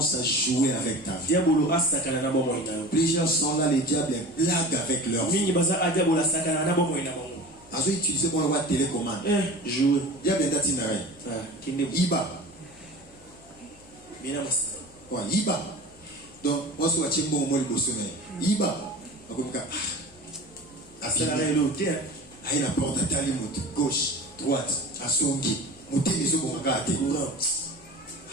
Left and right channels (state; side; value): noise; left; hum, 26 dB below the sound